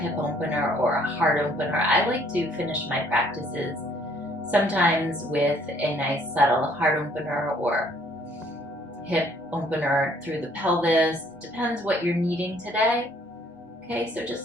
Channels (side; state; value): both; normal; correlation 0.62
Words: opener or a heart opener. I like to finish my practices sometimes with a nice subtle heart opener or hip opener through the pelvis. Depends what you're needing today. Okay, so